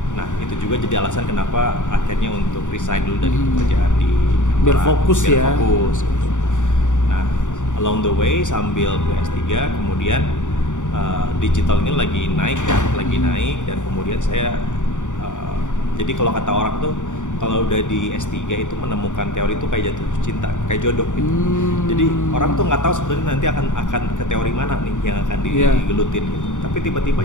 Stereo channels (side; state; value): right; late; 0.86 ms